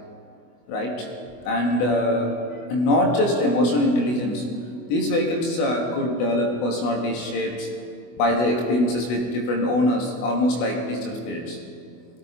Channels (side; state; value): right; late; 24 ms